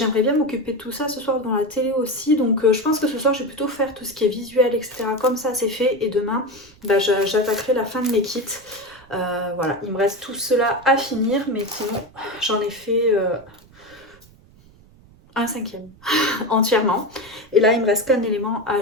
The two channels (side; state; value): right; noise; rumble, 26 dB below the sound